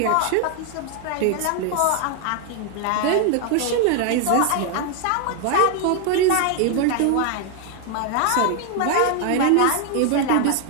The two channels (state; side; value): different; both; correlation 0.00